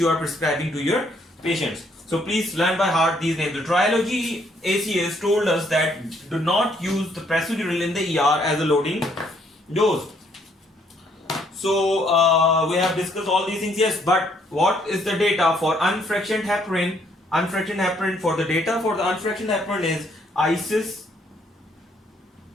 are prescribing to your patients. So please learn by heart these names. The Trilogy ACS told us that do not use the procedural in the ER as a loading dose. So we have discussed all these things, yes, but what is the data for unfractioned heparin? Unfractioned heparin, for the data for the unfractioned heparin is ISIS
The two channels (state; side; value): normal; both; correlation 0.68